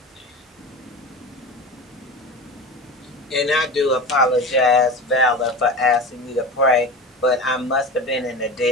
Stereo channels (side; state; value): both; normal; correlation 0.30